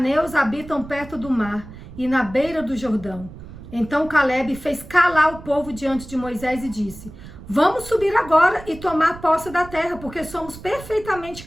habitam perto do mar e na beira do Jordão. Então Calebe fez calar o povo diante de Moisés e disse: vamos subir agora e tomar posse da terra, porque somos perfeitamente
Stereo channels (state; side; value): noise; right; rumble, 15 dB below the sound